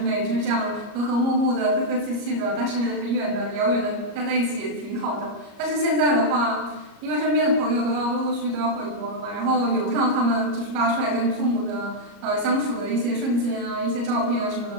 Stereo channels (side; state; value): left; late; 34 ms